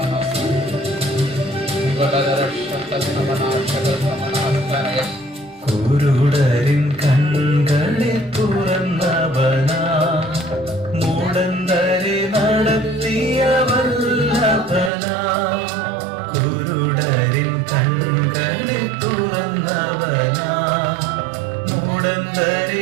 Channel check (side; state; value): left; drops out; at 14.9 s